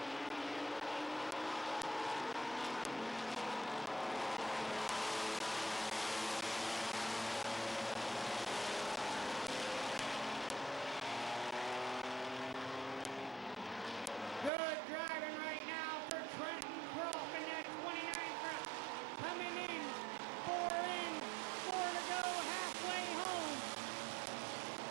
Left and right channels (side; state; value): left; drops out; at 14.5 s